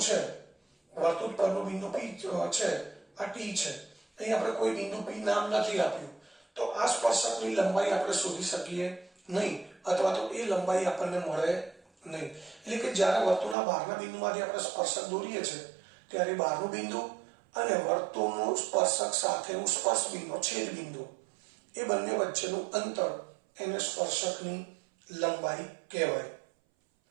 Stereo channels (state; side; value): drops out; left; at 13.6 s